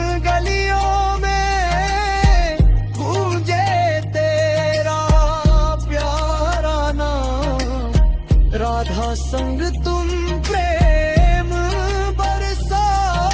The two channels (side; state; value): both; identical; correlation 1.00